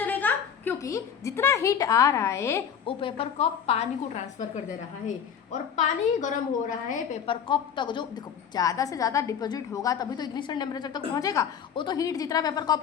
क्योंकि जितना हीट आ रहा है वो पेपर कप पानी को ट्रांसफर कर दे रहा है और पानी गर्म हो रहा है पेपर कप तक। जो देखो ज़्यादा से ज़्यादा डिपॉजिट होगा तभी तो इग्निशन टेम्परेचर तक पहुंचेगा। वो तो हीट जितना पेपर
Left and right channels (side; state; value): right; quieter; 7.9 dB